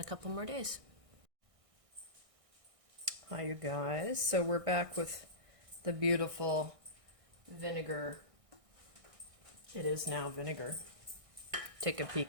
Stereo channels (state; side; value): late; left; 1.6 ms